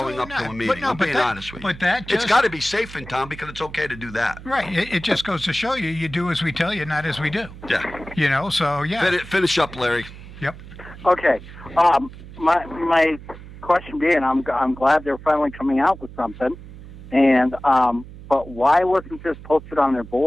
up absolutely to a not. meeting. But no, I'm but being that- honest with you. but that it's just- got to be safe in town because it's okay to do that. Right. It just goes to show you, you do as we tell you, not as we do. Yeah. You know, so yeah. Finish up, Larry. Yep. Okay. My question being, I'm glad they're finally coming out with something, and but why wasn't this posted on their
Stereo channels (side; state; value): right; noise; hum, 16 dB below the sound